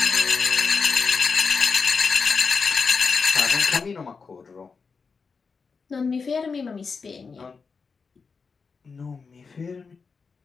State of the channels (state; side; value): quieter; right; 5.0 dB